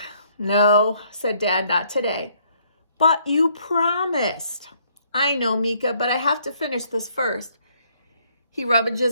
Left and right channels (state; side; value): inverted; both; correlation -0.67